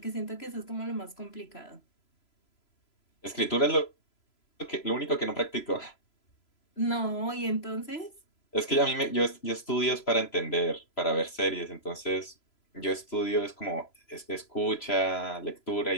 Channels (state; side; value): late; right; 3.0 ms